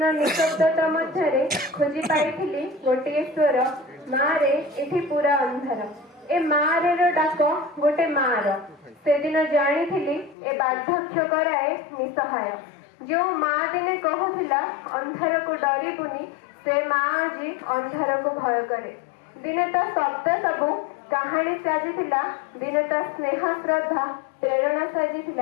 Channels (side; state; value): right; drops out; at 10.4 s